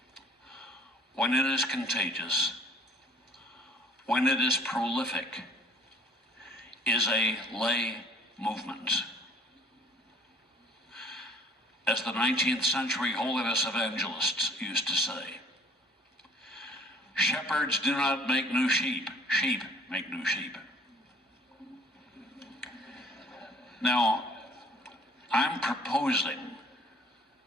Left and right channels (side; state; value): both; normal; correlation 0.55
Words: when it is contagious, when it is prolific, is a lay movement. As the 19th century holiness evangelists used to say, shepherds do not make new sheep, sheep make new sheep. Now, I'm proposing